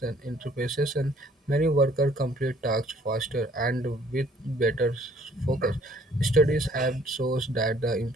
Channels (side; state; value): both; normal; correlation 0.60